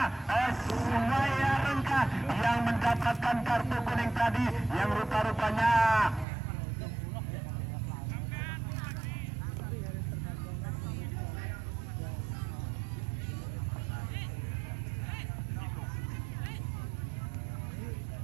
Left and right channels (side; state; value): left; drops out; at 6.2 s